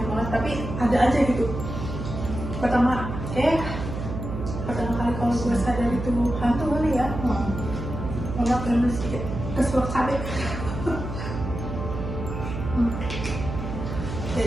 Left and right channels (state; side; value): noise; right; hum, 6 dB below the sound